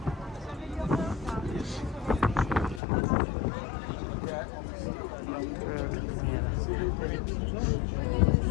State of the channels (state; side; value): drops out; right; at 2.8 s